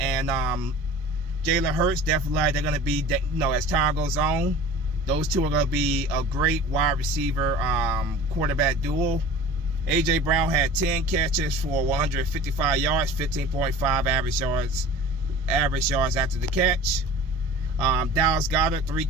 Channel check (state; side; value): normal; both; correlation 0.41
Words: Jalen Hurts, definitely they're going to be, as time goes on, those two are going to be a great wide receiver quarterback duo. AJ Brown had 10 catches for 155 yards, 15.5 average yards after the catch. Dallas Goedert, 3